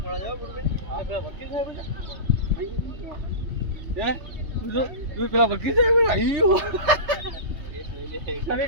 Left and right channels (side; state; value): left; late; 3.2 ms